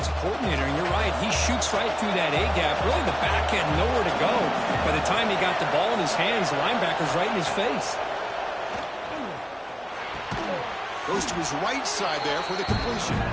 coordinator. And you're right, he shoots right through that A-gap. Really, the back had nowhere to go. By the time he got the ball in his hands, the linebacker's right in his face. Goes to his right side there for the completion.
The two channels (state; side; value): identical; both; correlation 1.00